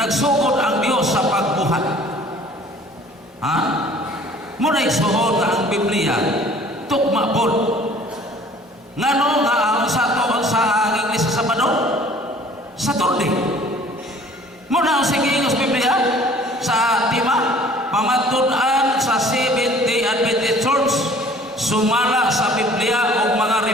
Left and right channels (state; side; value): normal; both; correlation 0.52